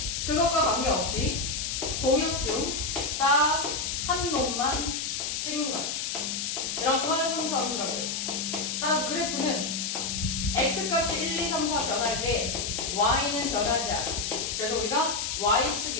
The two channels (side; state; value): left; noise; hiss, 2 dB below the sound